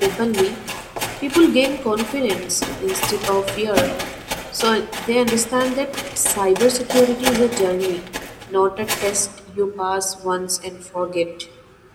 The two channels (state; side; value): identical; both; correlation 1.00